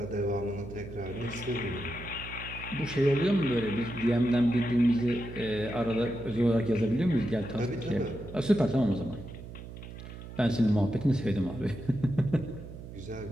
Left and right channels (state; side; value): noise; right; hum, 12 dB below the sound